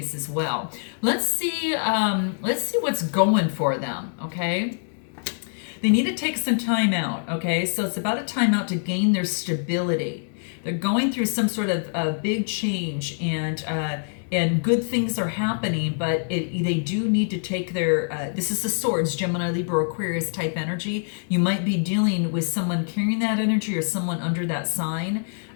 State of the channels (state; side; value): silent; right; 62 dB below the other